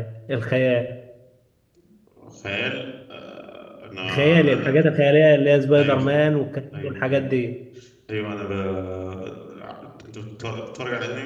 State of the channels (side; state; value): both; identical; correlation 1.00